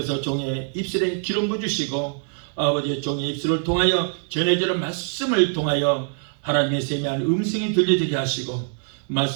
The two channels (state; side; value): silent; left; 56 dB below the other